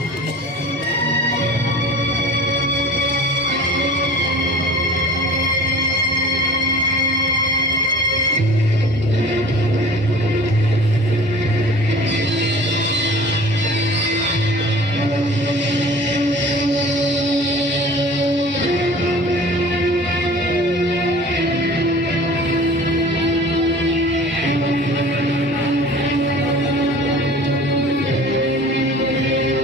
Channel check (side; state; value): both; normal; correlation 0.43